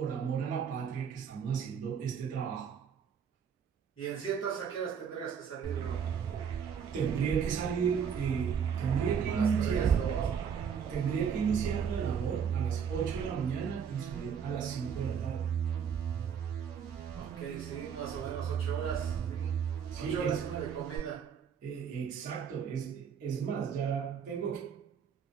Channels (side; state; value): left; quieter; 7.3 dB